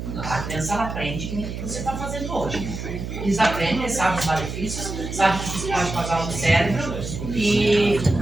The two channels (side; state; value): right; noise; hum, 7 dB below the sound